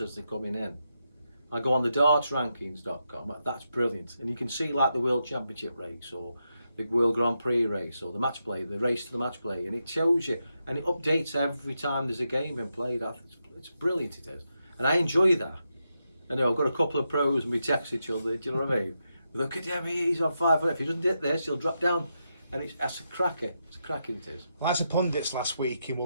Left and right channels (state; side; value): inverted; both; correlation -0.85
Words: they're coming in. I go on the dartsrankings.com, that's brilliant. And you can see like the World Championship race or the World Grand Prix race or the match play, the race to the match play. And it shows you, and it updates every time there's a game in play. It's brilliant, it is. And I enjoy that. I know I've got a couple of pros and we text each other, do you know what I mean? Look at him, he's on 5. If he doesn't hit this, he'll drop down. And that's a cracker. It's a cracking it is. Well, as a pundits last week in